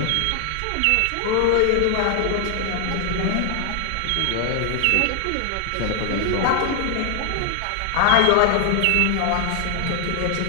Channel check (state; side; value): different; both; correlation 0.00